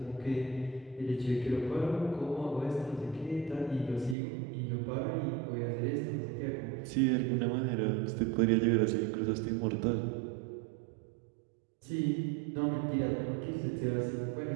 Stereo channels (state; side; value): drops out; left; at 4.2 s